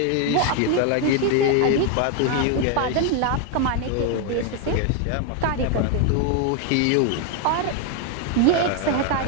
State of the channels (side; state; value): both; different; correlation 0.01